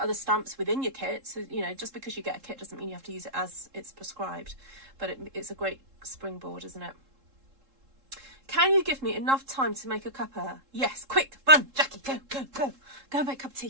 stamps within your kit. So, you know, just because you get a kit doesn't mean you have to use it as it's prescribed, but it's a great springboard, isn't it? Can you give me enough time to make a cuppa? Yes, quick, run, Jackie, go and make a cup of tea,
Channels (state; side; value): late; left; 3.7 ms